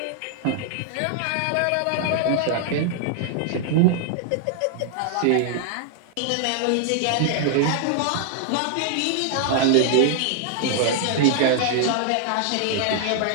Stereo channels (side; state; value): both; different; correlation 0.00